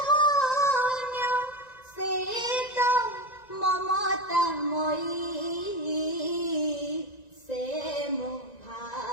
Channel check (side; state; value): right; late; 1.9 ms